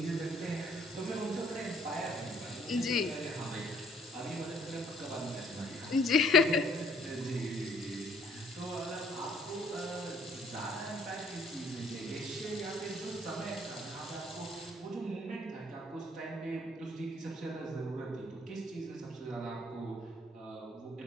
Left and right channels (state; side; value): normal; both; correlation 0.61